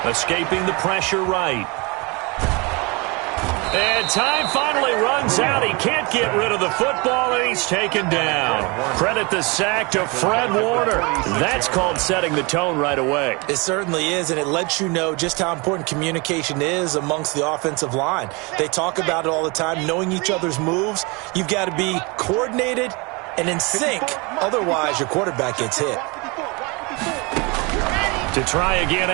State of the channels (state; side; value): quieter; left; 28.1 dB